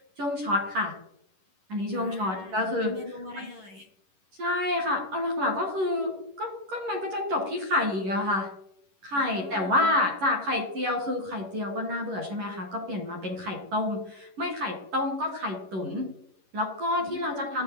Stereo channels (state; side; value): late; left; 11 ms